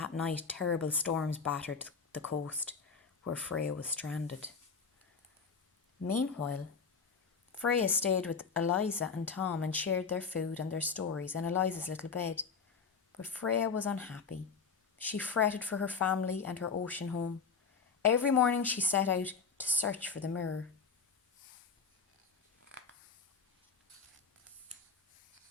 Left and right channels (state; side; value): quieter; right; 5.5 dB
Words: night terrible storms battered the coast where Freya was stranded. Meanwhile, Freya stayed with Eliza and Tom and shared their food and their stories in Eliza's little bed. But Freya was unhappy. She fretted for her family and her ocean home. Every morning she set out to search for the mirror.